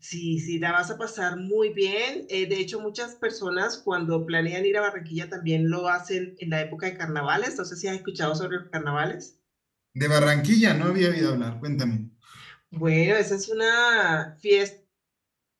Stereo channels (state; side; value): identical; both; correlation 1.00